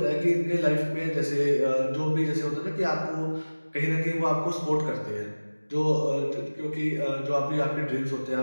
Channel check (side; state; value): both; inverted; correlation -1.00